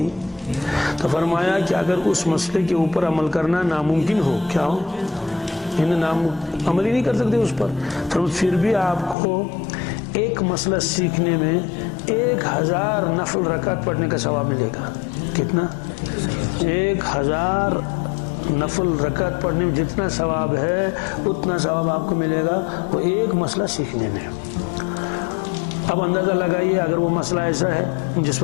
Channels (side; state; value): right; drops out; at 9.2 s